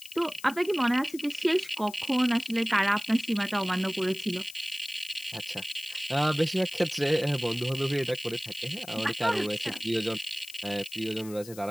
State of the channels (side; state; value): left; noise; hiss, 17 dB below the sound